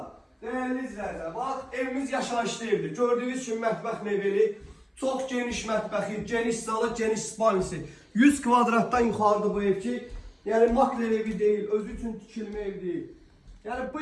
Değerli izləyicilər, bax evimiz yaşayışlı evdir. Gördüyünüz kimi mətbəx mebeli, çox geniş mətbəxi, geniş zalı, geniş spanisi. 100 kvadratdan yuxarıdır bu ev ki, yəni makler evi deyil, özü üçün tikilmə ev deyil. Yəni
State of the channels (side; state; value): both; identical; correlation 1.00